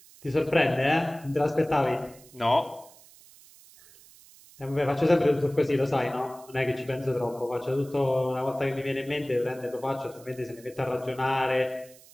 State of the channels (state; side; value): noise; right; hiss, 23 dB below the sound